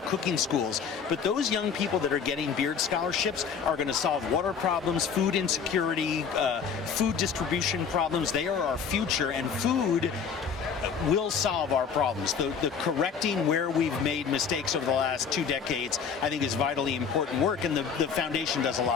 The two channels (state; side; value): quieter; right; 6.5 dB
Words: cooking schools, but those young people that are getting Beard scholarships are going to solve water problems, food insecurity, food distribution problems. They are our future, and food will solve our problems. The correcting where we've made mistakes over the last 2 decades, I think, is vitally important work, and the foundation does a